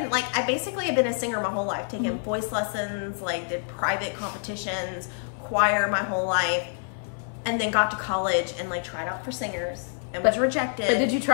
basically have been a singer my whole life, taking voice lessons, like did private competitions, choir my whole life, and then got to college and like tried out for singers and was rejected. But did you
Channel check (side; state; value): right; silent; 60 dB below the other